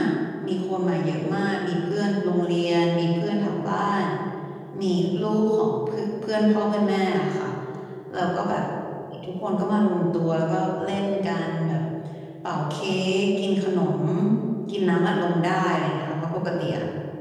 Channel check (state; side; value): identical; both; correlation 1.00